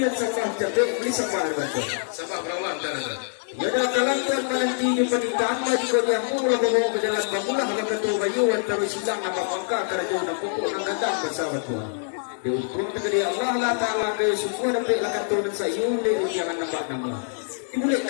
sembah jadi beli sembah betul. Sembah memperoleh tuan. Ya dah kalang Tuhan menanti di pernikahan bagi kau yang mula bawa ke jalan bangulah kalau ketua bayu terus silang nama bangka kerja nak pokok nak gadang bersama Tuhan. Dia ukur tegadi Allah lah Taala ke semua dapat lakukan Tuhan sayun dia jangan nampak nama.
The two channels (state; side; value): silent; right; 62 dB below the other